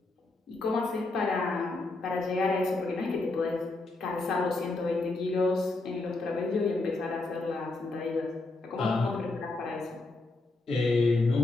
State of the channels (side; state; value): right; quieter; 3.2 dB